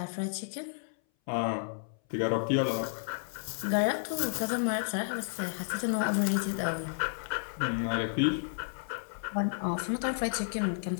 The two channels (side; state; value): right; silent; 56 dB below the other